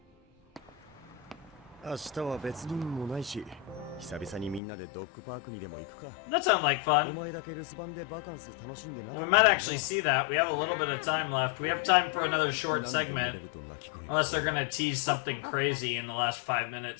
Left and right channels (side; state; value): right; drops out; at 4.6 s